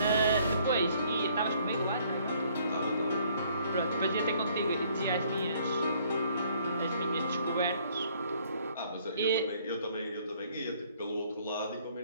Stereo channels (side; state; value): both; inverted; correlation -0.62